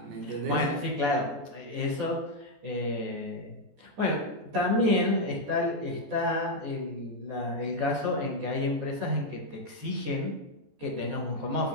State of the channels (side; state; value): left; late; 14 ms